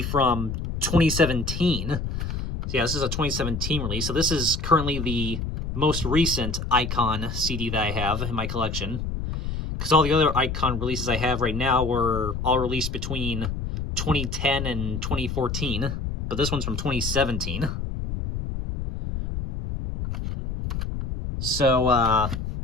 from 2017. So yeah, this is a 2017 release. So this is currently the most recent Icon CD that I have in my collection, because all the other Icon releases I have right now were all released between 2010 and 2014, but this one's from 2017. So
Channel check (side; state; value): left; noise; rumble, 4 dB below the sound